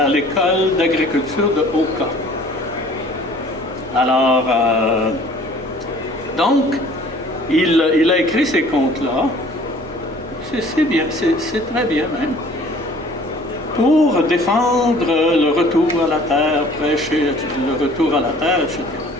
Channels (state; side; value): normal; both; correlation 0.51